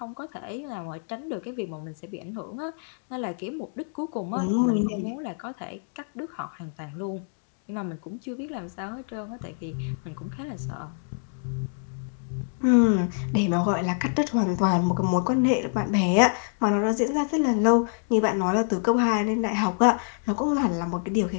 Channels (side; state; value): right; silent; digital silence